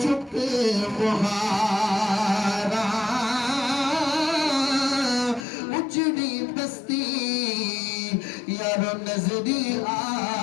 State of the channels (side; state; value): right; drops out; at 5.5 s